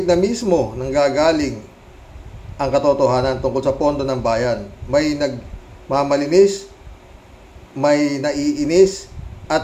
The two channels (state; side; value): identical; both; correlation 1.00